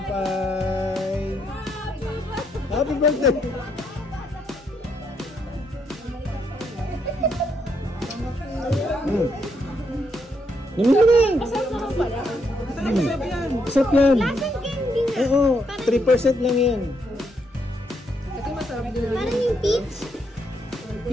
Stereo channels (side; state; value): both; normal; correlation 0.76